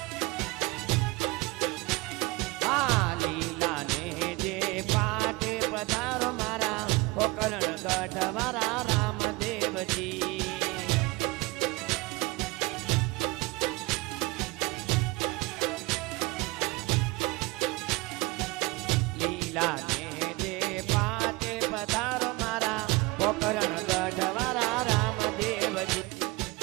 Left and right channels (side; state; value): left; quieter; 23.1 dB